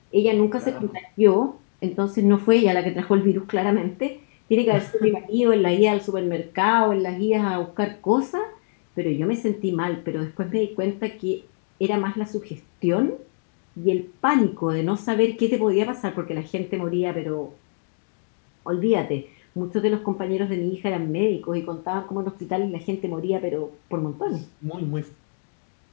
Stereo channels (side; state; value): right; silent; digital silence